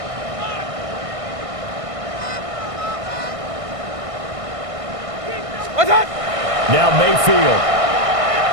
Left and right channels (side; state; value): left; late; 1.6 ms